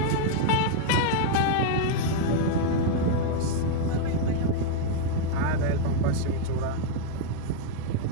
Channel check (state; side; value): different; both; correlation -0.01